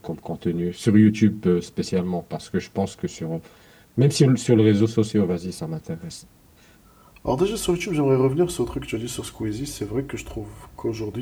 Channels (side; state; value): both; identical; correlation 1.00